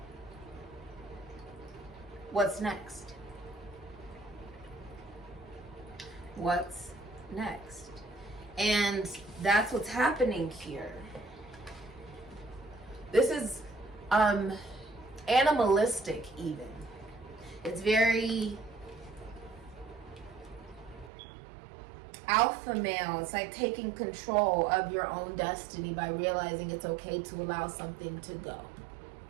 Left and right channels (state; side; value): drops out; left; at 21.1 s